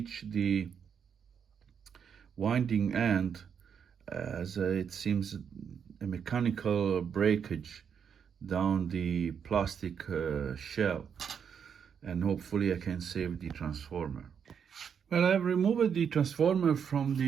the winding end, as it seems a mechanical breakage down the plastic shell, and hopefully I can save the transformer. Well, I've removed the transformer from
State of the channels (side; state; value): left; quieter; 7.4 dB